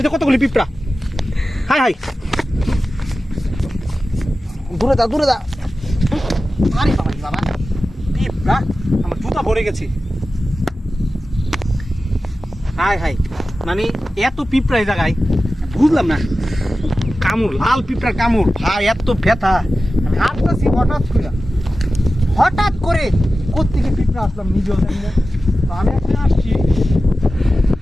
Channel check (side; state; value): both; normal; correlation 0.94